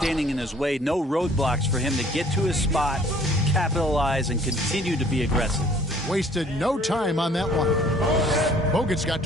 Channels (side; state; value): both; normal; correlation 0.56